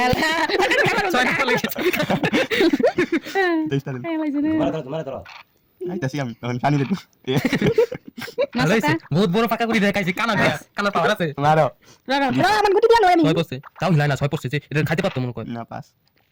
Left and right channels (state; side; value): identical; both; correlation 1.00